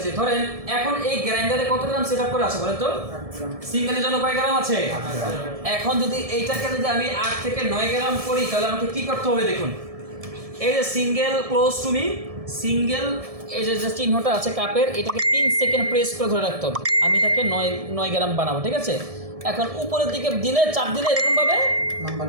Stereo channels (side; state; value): left; late; 1.7 ms